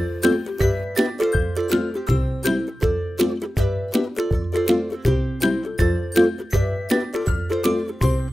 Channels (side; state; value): both; normal; correlation 0.95